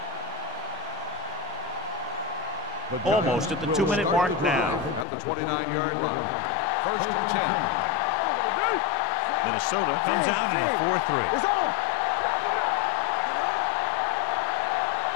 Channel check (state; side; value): drops out; right; at 5.1 s